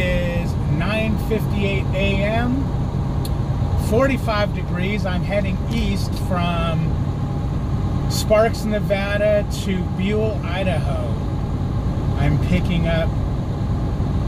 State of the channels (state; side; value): identical; both; correlation 1.00